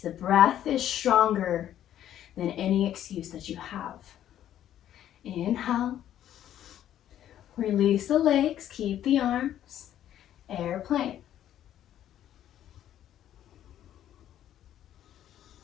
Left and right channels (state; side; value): quieter; right; 11.4 dB